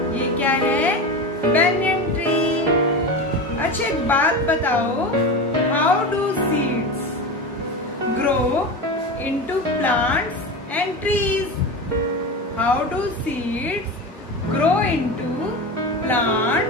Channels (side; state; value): both; normal; correlation 0.25